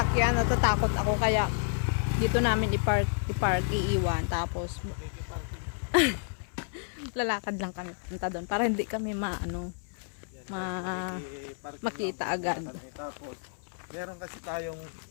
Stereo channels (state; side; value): silent; right; 58 dB below the other